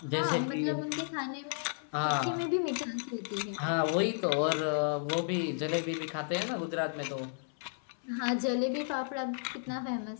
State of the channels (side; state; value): right; silent; 56 dB below the other